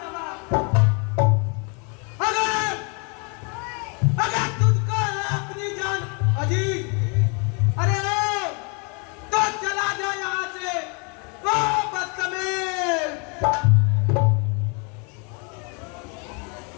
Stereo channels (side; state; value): right; quieter; 34.4 dB